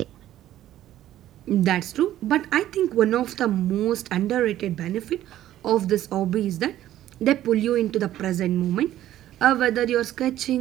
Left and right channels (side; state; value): left; quieter; 13.0 dB